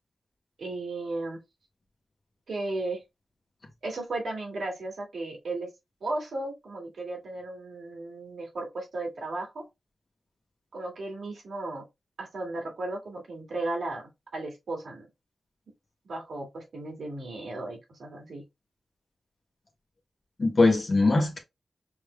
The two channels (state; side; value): normal; both; correlation 0.91